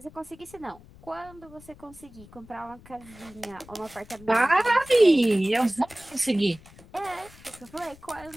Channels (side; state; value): left; noise; rumble, 22 dB below the sound